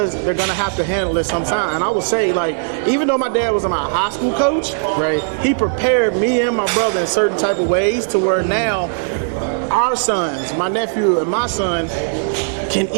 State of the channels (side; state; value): left; silent; digital silence